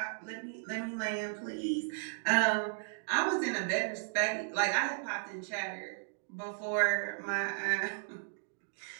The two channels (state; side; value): silent; left; digital silence